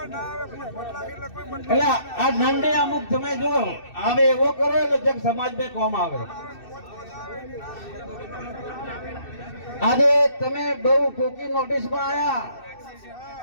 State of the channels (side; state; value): right; late; 2.6 ms